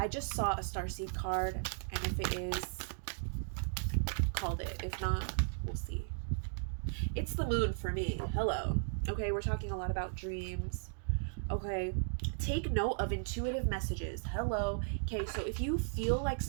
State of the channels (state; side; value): silent; left; digital silence